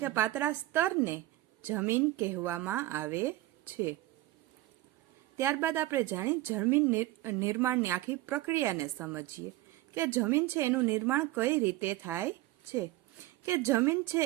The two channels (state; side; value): quieter; left; 17.1 dB